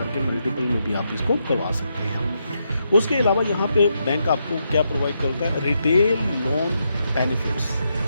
के मल्टीपल में भी आप इसको करवा सकते हैं। उसके अलावा यहाँ पे बैंक आपको क्या प्रोवाइड करता है, रिटेल लोन बेनिफिट्स।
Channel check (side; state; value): both; inverted; correlation -0.82